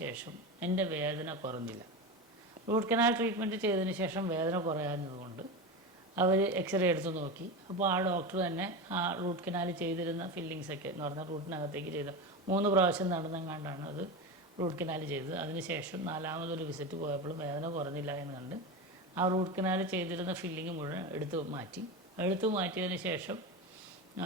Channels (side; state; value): both; normal; correlation 0.21